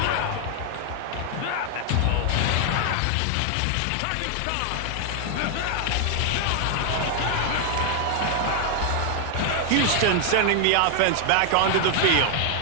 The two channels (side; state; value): both; different; correlation 0.00